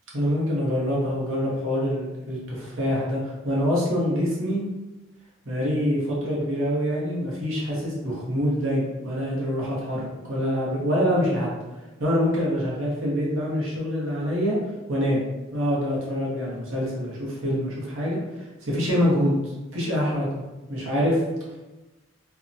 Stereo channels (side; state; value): both; normal; correlation 0.60